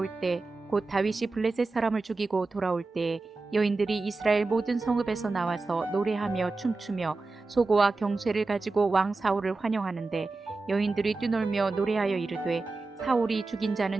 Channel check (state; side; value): quieter; left; 3.6 dB